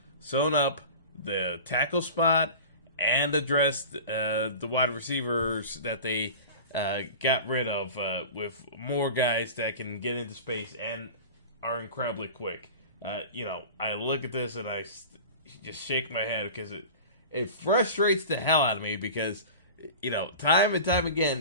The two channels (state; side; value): inverted; both; correlation -0.36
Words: sewn up the tackle spot and addressed the wide receivers that they got rid of with more guys that can get into space and are incredibly quick. I look at this and I just shake my head because it frustrates the hell out of me because, time and time